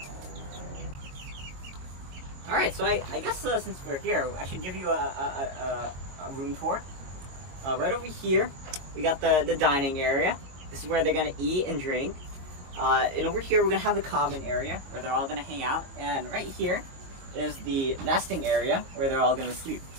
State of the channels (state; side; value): late; left; 22 ms